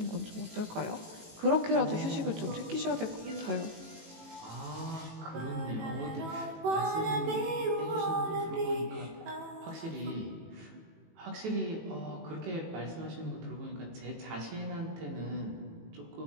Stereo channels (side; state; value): left; late; 18 ms